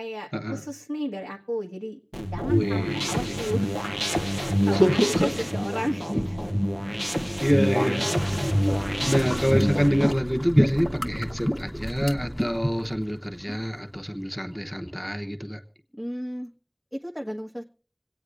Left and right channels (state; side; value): identical; both; correlation 1.00